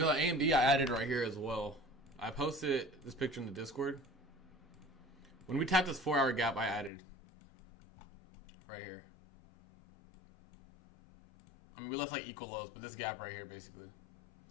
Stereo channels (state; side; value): drops out; right; at 6.9 s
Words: AMD I added right here as well. I posted this picture in the Discord. When we tapped this 4-hour gap, I added right here. I mean, we left like equal lows, but this gap right here, basically.